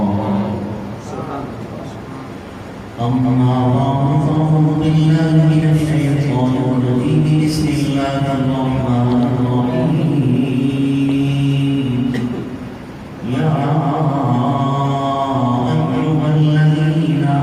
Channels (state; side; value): identical; both; correlation 1.00